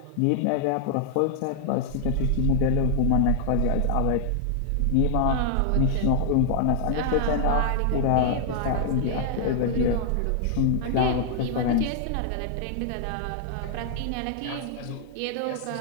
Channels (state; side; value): different; both; correlation -0.01